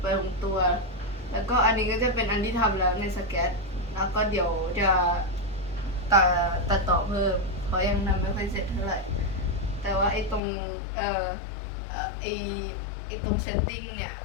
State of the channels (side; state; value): right; drops out; at 10.4 s